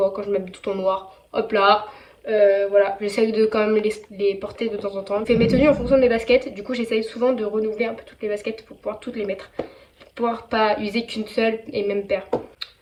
quand je m'habille tout en noir. Hop là, voilà, j'essaye de quand même les porter de temps en temps. Je fais mes tenues en fonction de mes baskets, du coup j'essaye souvent de renouveler un peu toutes les baskets pour pouvoir toutes les mettre. Pour pouvoir pas user qu'une seule et même paire.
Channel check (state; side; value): identical; both; correlation 1.00